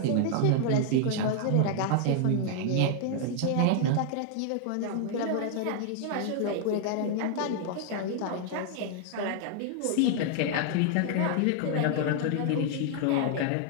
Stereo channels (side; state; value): both; different; correlation 0.00